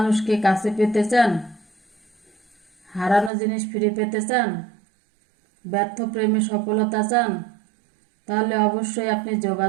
কাছে পেতে চান, হারানো জিনিস ফিরে পেতে চান, ব্যর্থ প্রেমে সফলতা চান, তাহলে অবশ্যই আপনি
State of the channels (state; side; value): drops out; left; at 3.3 s